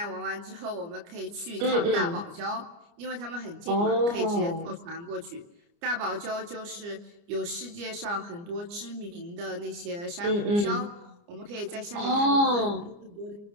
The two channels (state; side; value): late; left; 29 ms